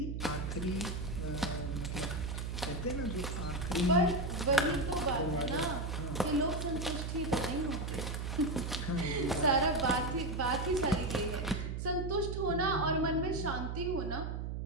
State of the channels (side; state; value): right; noise; hum, 3 dB below the sound